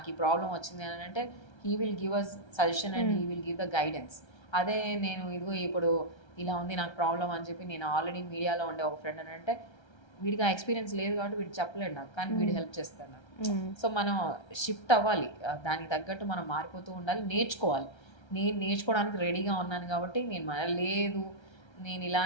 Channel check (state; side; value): late; right; 1.3 ms